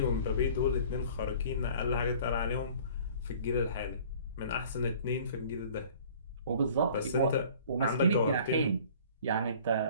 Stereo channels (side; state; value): both; inverted; correlation -0.50